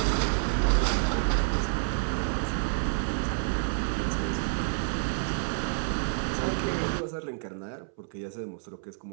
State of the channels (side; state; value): left; silent; 59 dB below the other